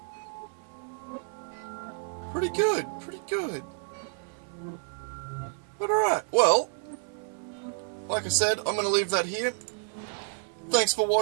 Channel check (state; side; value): silent; left; 58 dB below the other